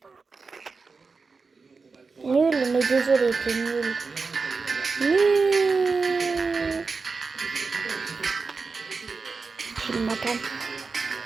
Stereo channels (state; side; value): quieter; left; 4.5 dB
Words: Nul, mais désolé, t'es nul. Nul. Je m'attends.